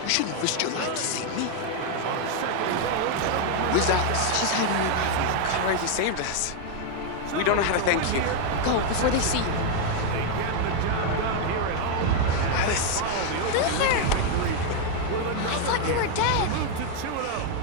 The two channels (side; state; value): both; different; correlation 0.00